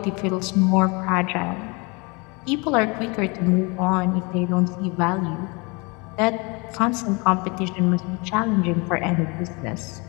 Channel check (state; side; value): quieter; right; 29.0 dB